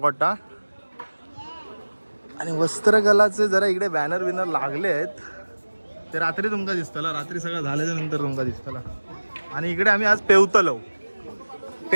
आणि वस्त्रकलाचे जरा इकडे बॅनर बिनर लागले आहेत ते रात्री तुमका दिसतला. रात्री सगळं झाल्याच्या नंतर तुमका दिसतला. आणि इकडे आम्ही आज पेवतलो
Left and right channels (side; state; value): both; inverted; correlation -1.00